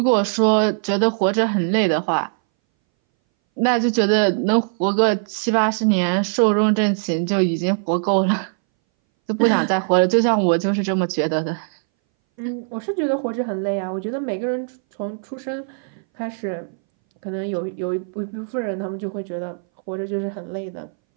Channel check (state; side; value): silent; left; 62 dB below the other